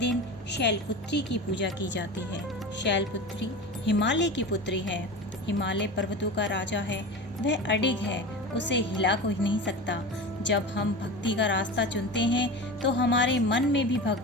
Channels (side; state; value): both; normal; correlation 0.30